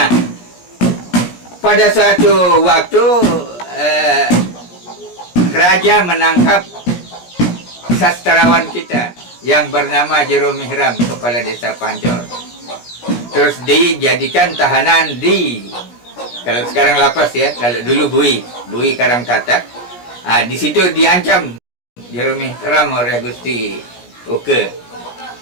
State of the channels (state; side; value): late; right; 17 ms